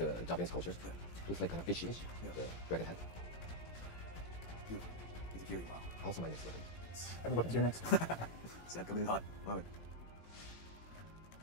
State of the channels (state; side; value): late; right; 18 ms